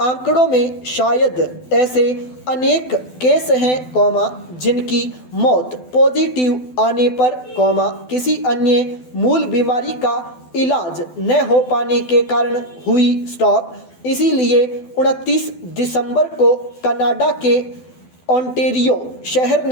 में शायद ऐसे अनेक केस हैं, जिनकी मौत पॉजिटिव आने पर, किसी अन्य मूल बीमारी का इलाज न हो पाने के कारण हुई। स्टॉप। इसीलिए 29 दिसंबर को कनाडा के ओंटारियो शहर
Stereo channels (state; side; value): late; right; 12 ms